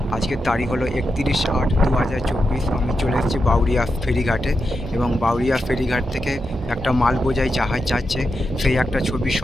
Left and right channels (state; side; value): normal; both; correlation 0.87